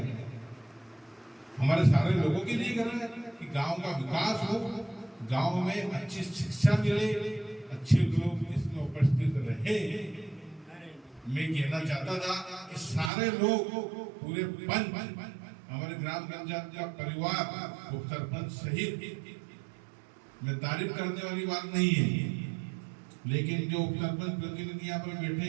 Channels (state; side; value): drops out; left; at 13.1 s